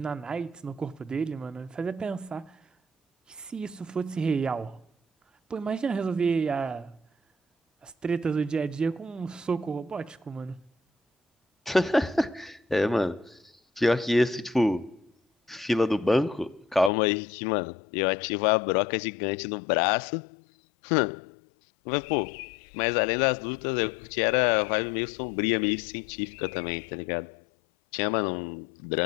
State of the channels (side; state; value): right; drops out; at 16.9 s